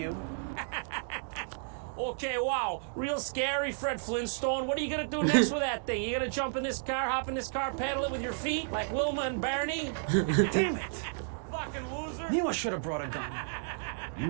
Okay, wow, real scary, Fred Flintstone. What are you gonna do next with that thing? You gonna jump in this car, hop in this car, paddle it with your feet like Wilma and Barney? Damn it! Fucking loser. Knew I should have brought a gun.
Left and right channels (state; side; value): silent; left; digital silence